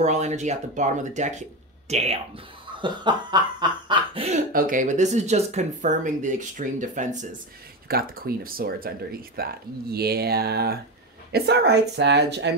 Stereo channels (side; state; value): both; normal; correlation 0.17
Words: energy at the bottom of the deck. Damn. Okay, but this is just confirming the extreme defenses. You've got the Queen of Swords underneath that. Yeah. It's all right, Sag. I